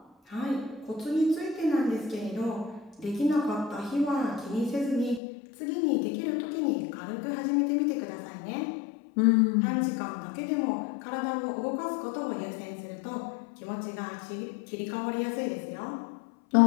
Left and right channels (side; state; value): right; drops out; at 5.2 s